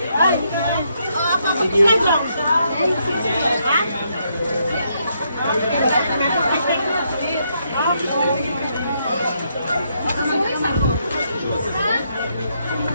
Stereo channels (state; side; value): inverted; both; correlation -0.76